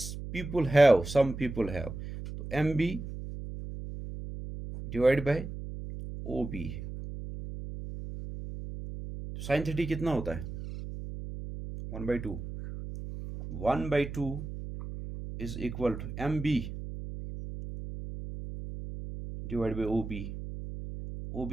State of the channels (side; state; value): right; noise; hum, 9 dB below the sound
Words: पीपल हैव, तो M B divide by O B, sine 30 कितना होता है 1/2, 1/2 is equal to M B divide by O B, O